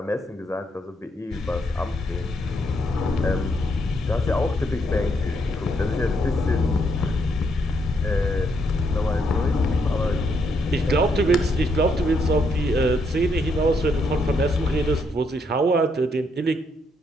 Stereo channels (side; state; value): both; normal; correlation 0.75